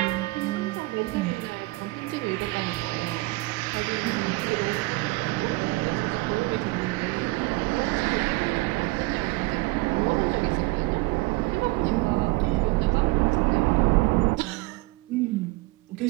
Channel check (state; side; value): quieter; left; 22.6 dB